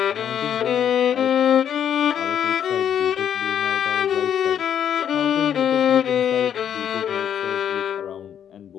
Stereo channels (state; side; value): quieter; right; 9.1 dB